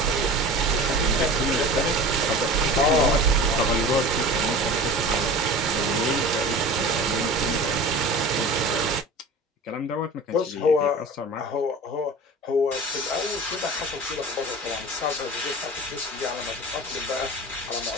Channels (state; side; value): normal; both; correlation 0.37